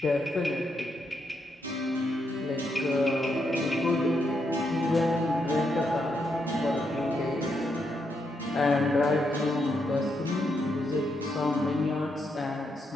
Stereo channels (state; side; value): normal; both; correlation 0.80